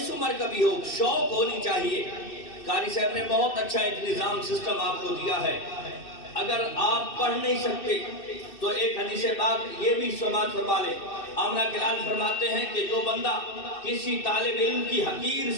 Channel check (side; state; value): right; late; 2.6 ms